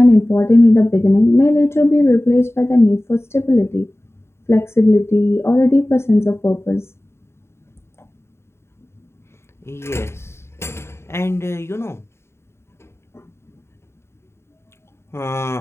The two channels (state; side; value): late; right; 0.12 ms